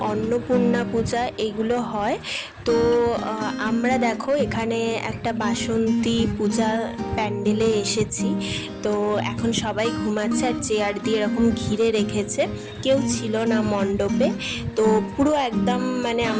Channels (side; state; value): both; identical; correlation 1.00